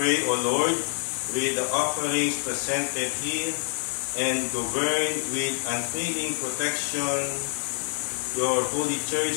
O Lord, with the offerings presented here, and govern with unfailing protection your holy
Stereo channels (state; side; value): silent; right; digital silence